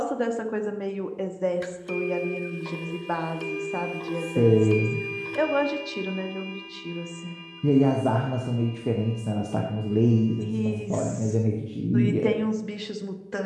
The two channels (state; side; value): identical; both; correlation 1.00